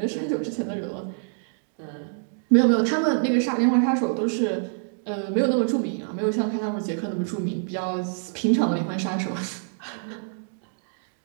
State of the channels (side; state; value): left; silent; digital silence